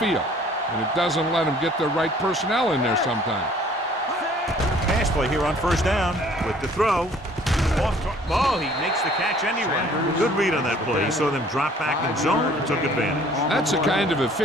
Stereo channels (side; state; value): both; normal; correlation 0.55